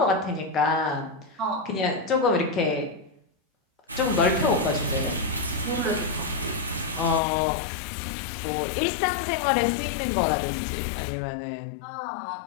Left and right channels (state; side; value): drops out; right; at 7.2 s